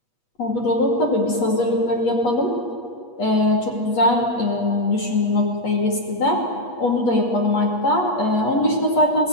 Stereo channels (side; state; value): right; late; 8.3 ms